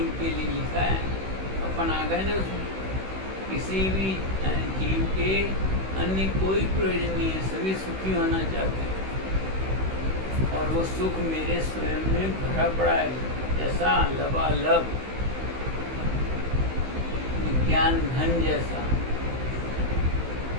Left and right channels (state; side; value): late; left; 16 ms